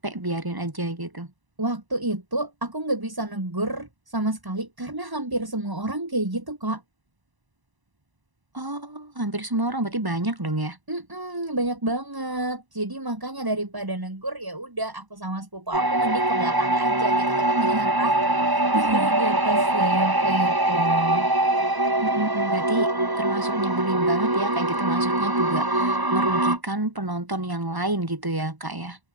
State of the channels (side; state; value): left; late; 1.0 ms